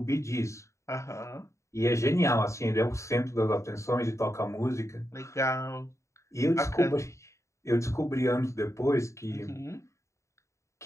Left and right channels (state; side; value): late; right; 0.14 ms